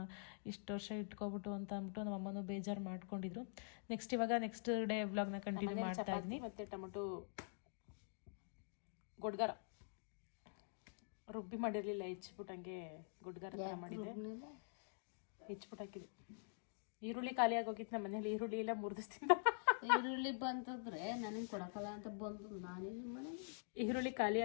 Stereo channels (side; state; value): right; silent; digital silence